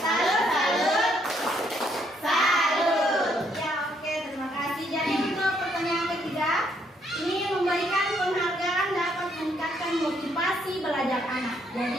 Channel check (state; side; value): normal; both; correlation 0.71